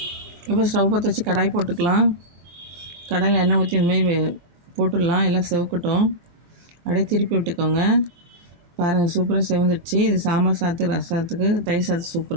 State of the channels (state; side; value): late; left; 23 ms